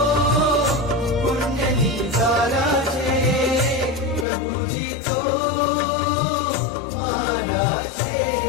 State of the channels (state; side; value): drops out; right; at 4.2 s